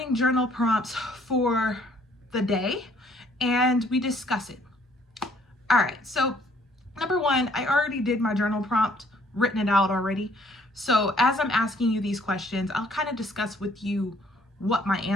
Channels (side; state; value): both; normal; correlation 0.63